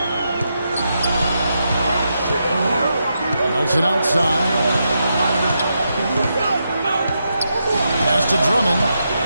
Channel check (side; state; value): both; inverted; correlation -0.84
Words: Nelson outside. Pass to Drummond.